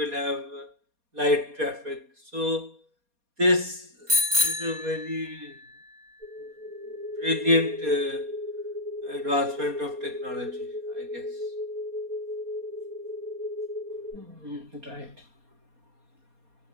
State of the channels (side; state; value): left; late; 4.2 ms